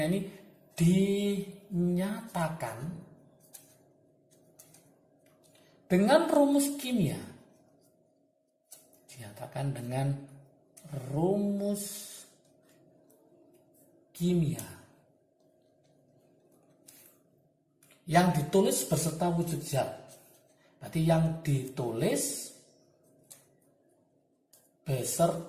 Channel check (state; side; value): identical; both; correlation 1.00